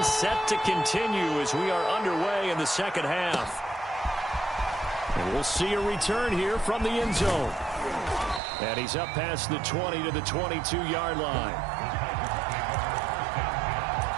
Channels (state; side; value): drops out; left; at 8.4 s